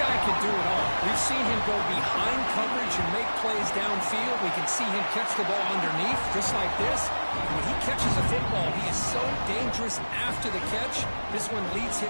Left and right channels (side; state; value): both; inverted; correlation -1.00